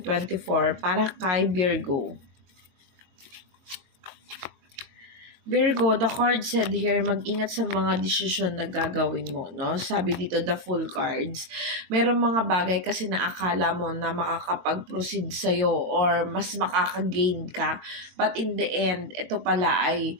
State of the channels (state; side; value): late; left; 22 ms